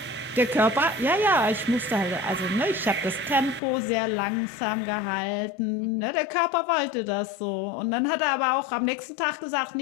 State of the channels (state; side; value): drops out; right; at 3.6 s